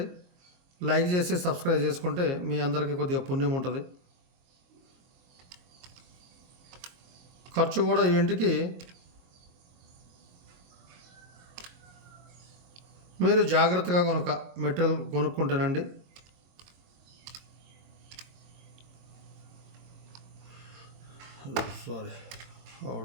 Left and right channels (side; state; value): left; late; 22 ms